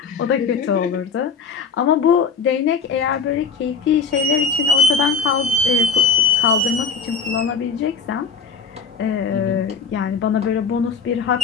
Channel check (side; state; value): right; quieter; 5.4 dB